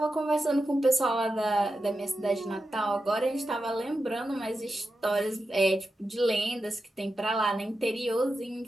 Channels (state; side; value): normal; both; correlation 0.89